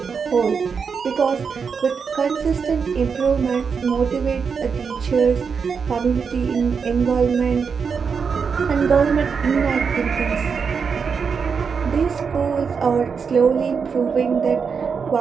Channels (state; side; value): quieter; left; 5.9 dB